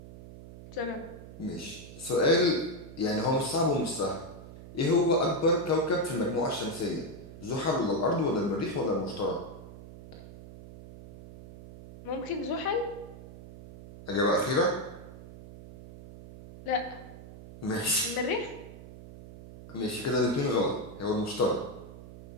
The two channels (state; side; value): noise; right; hum, 15 dB below the sound